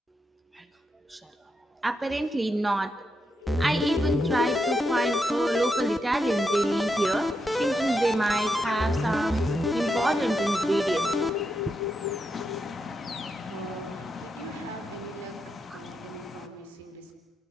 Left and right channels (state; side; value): normal; both; correlation 0.84